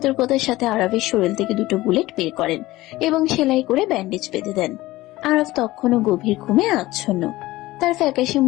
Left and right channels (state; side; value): quieter; right; 17.9 dB